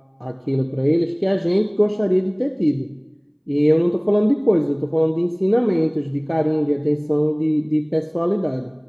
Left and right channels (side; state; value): both; identical; correlation 1.00